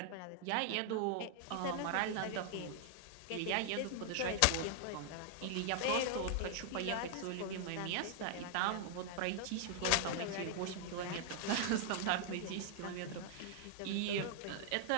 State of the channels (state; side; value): different; both; correlation -0.01